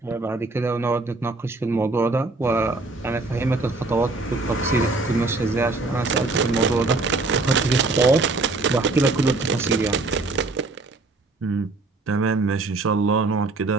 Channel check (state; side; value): quieter; left; 3.4 dB